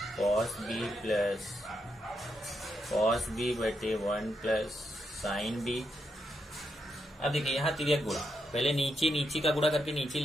cos B plus cos B बटे 1 प्लस साइन बी। अब देखिए यहाँ तिर्यक गुणा, पहले नीचे का गुणा करके नीचे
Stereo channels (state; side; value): normal; both; correlation 0.82